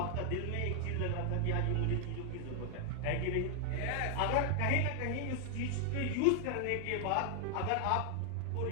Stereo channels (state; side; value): different; both; correlation 0.00